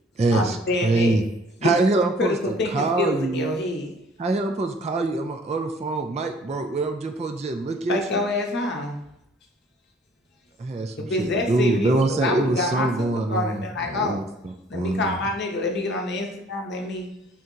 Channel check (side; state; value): both; normal; correlation 0.56